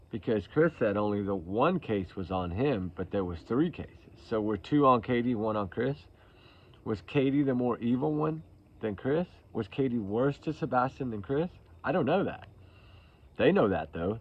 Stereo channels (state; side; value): identical; both; correlation 1.00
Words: Because Chris said only the one case was on him, but there was 3 cases. So were 2 on Katie, 1 on Chris? Was Katie the more evil one than Chris? Was Katie worse to Sebastian than Chris? I don't know that. They know that, though.